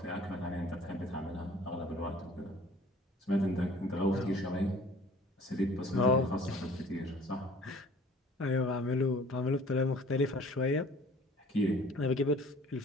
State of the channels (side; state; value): both; normal; correlation 0.51